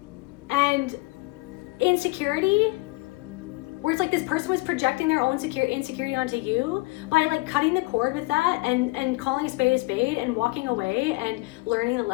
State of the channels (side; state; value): right; quieter; 24.0 dB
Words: and insecurity, where it's like this person was projecting their own insecurity onto you. By like cutting the cord with that and calling a spade and walking away and learning the